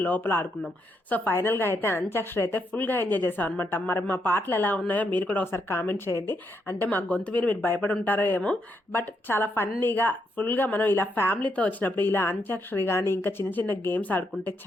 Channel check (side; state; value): both; normal; correlation 0.79